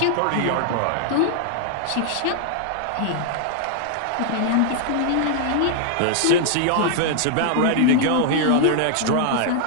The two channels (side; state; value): both; different; correlation 0.00